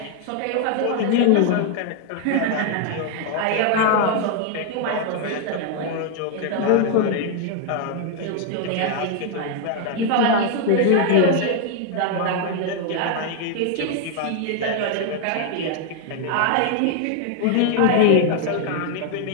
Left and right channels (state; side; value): different; both; correlation 0.00